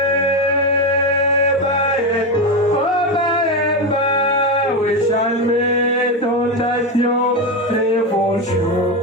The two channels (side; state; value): both; normal; correlation 0.13